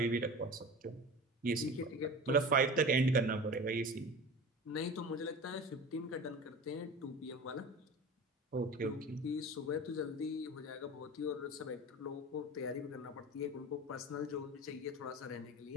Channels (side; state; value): both; normal; correlation 0.34